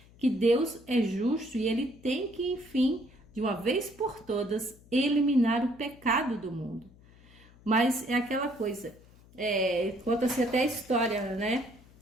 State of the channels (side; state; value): left; noise; hum, 25 dB below the sound